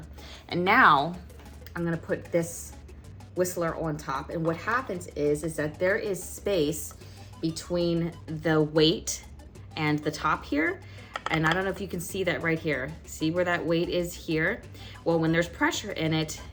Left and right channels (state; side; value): identical; both; correlation 1.00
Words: And now I'm gonna put this whistler on top. And what happens is that there is space between the weight and the top here. And I don't know if you can see that right here. See where that weight is here? Well, when there's pressure in it,